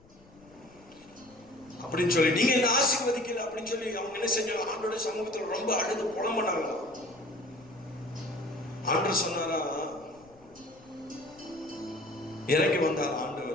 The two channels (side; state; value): left; noise; rumble, 27 dB below the sound